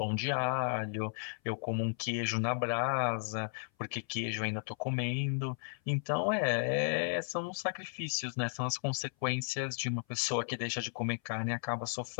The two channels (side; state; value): right; silent; 55 dB below the other